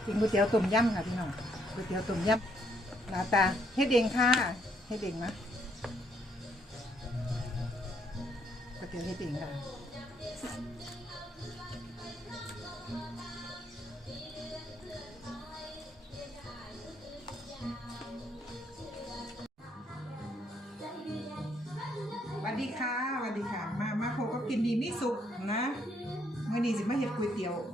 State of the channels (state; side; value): normal; both; correlation 0.71